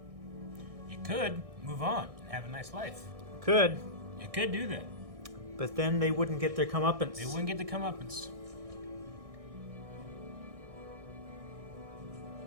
You could move on and have a nice life. Could. You could do that. But then they wouldn't get their comeuppance. They wouldn't get the comeuppance.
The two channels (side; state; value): left; late; 1.6 ms